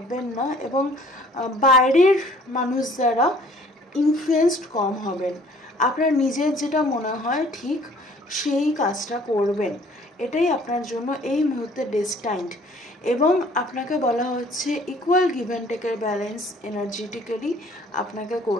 না, এবং বাইরের মানুষ দ্বারা ইনফ্লুয়েসড কম হবেন। আপনার নিজের যেটা মনে হয় ঠিক সেই কাজটা করবেন, এটাই আপনার জন্য এই মুহূর্তে ডেস্টাইন্ড। এবং আপনাকে বলা হচ্ছে ইকুয়াল গিভ অ্যান্ড টেকের ব্যালেন্স এনার্জেটিক্যালি আপনাকে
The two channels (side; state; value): both; normal; correlation 0.55